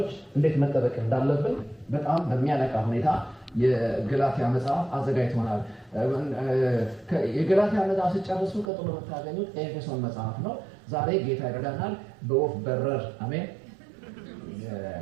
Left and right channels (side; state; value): left; drops out; at 8.7 s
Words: እንዴት መጠበቅ እንዳለብን በጣም በሚያነቃ ሁኔታ የገላትያ መጽሐፍ አዘጋጅቶናል። የገላትያ መጽሐፍ ሲጨርሱ ቀጥሎ የምታገኙት ኤፌሶን መጽሐፍ ነው። ዛሬ ጌታ ይረዳናል በወፍ በረር አሜን።